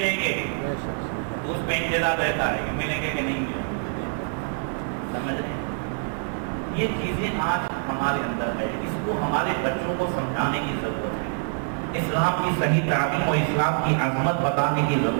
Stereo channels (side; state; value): left; silent; 61 dB below the other